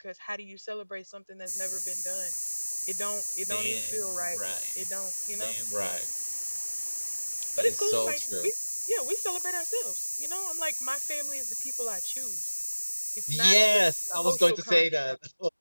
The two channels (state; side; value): inverted; both; correlation -1.00